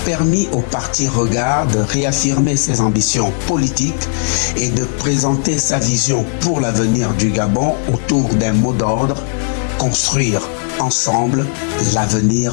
permis au parti Regard de réaffirmer ses ambitions politiques et de présenter sa vision pour l'avenir du Gabon autour d'un mot d'ordre: construire ensemble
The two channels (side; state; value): right; silent; digital silence